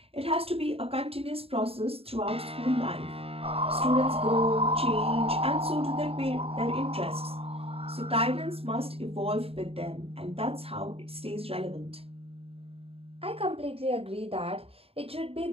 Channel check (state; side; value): late; left; 0.28 ms